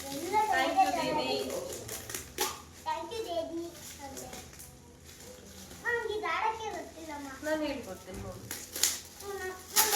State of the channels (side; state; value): both; identical; correlation 1.00